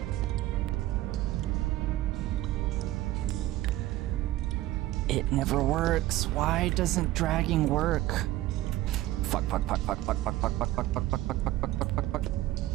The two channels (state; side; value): quieter; left; 15.8 dB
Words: It never works. Why doesn't dragging work? Fuck.